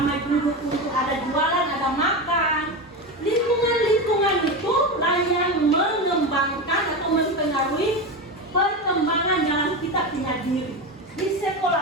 duduk untuk ada jualan, ada makan. Lingkungan itu lah yang mengembangkan atau mempengaruhi perkembangan dalam kita punya diri. Di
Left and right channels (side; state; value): both; normal; correlation 0.20